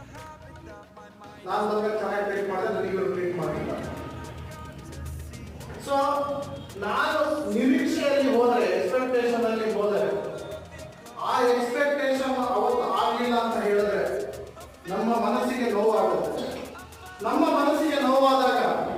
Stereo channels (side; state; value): both; identical; correlation 1.00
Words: ನಾನು ಬಂದಾಗ ಚೆನ್ನಾಗಿ ಟ್ರೀಟ್ ಮಾಡಿದೆ, ನನಗೆ ಇವರು ಟ್ರೀಟ್ ಮಾಡಿಲ್ಲ. ಸೊ ನಾನು ನಿರೀಕ್ಷೆಯಲ್ಲಿ ಹೋದರೆ, ಎಕ್ಸ್ಪೆಕ್ಟೇಷನ್ ಅಲ್ಲಿ ಹೋದರೆ, ಆ ಎಕ್ಸ್ಪೆಕ್ಟೇಷನ್ ಅವತ್ತು ಆಗಲಿಲ್ಲ ಅಂತ